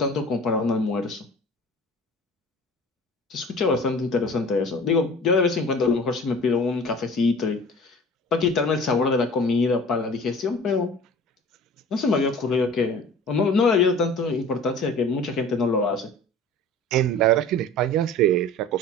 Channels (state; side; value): normal; both; correlation 0.42